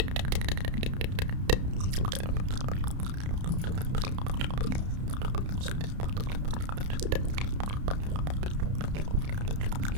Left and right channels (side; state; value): left; late; 31 ms